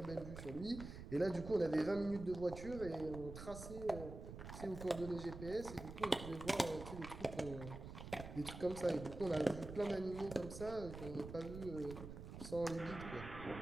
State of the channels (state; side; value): noise; right; rumble, 10 dB below the sound